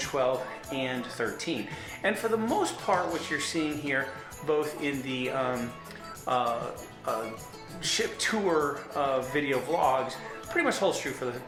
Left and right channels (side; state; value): both; identical; correlation 1.00